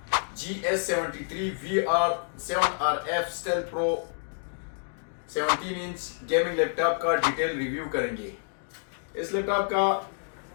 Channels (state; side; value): silent; right; digital silence